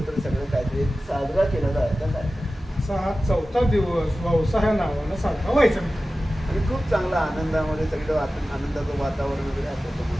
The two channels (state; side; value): normal; both; correlation 0.95